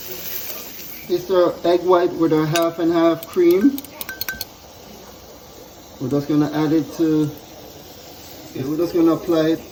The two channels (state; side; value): identical; both; correlation 1.00